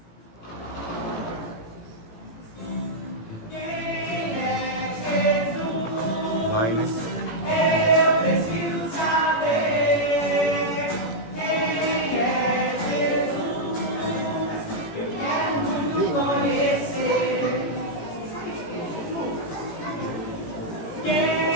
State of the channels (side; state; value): right; late; 18 ms